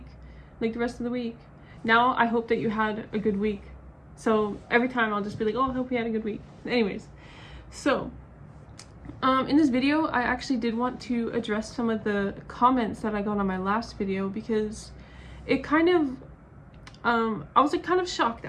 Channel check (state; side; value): identical; both; correlation 1.00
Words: like the rest of the week. Now I hope that you had a good week. So every time I'll just be like, oh, I hope you had a good week. Anyways, so in this video, I actually did want to address some of the comments that I got on my last video because it kind of, I was like kind of shocked